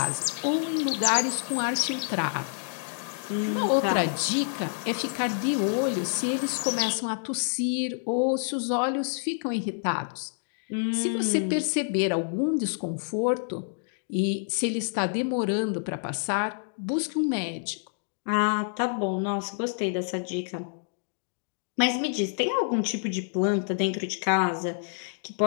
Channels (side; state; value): right; silent; digital silence